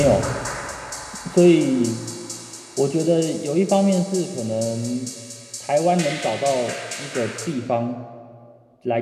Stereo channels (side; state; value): both; identical; correlation 1.00